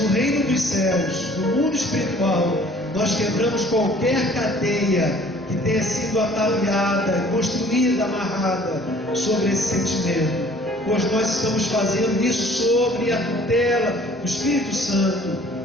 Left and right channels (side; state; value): both; normal; correlation 0.53